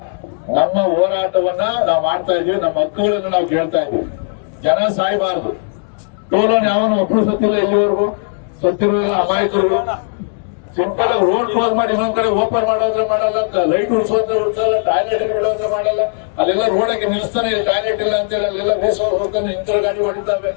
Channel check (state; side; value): silent; right; digital silence